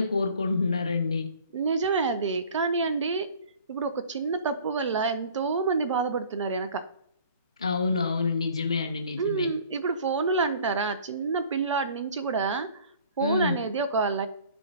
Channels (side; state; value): both; inverted; correlation -0.50